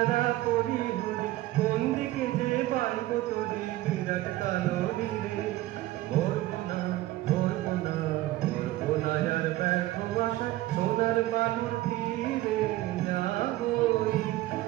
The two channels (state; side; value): quieter; left; 16.5 dB